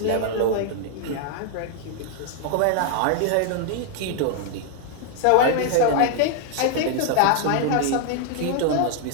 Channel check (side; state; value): both; different; correlation 0.00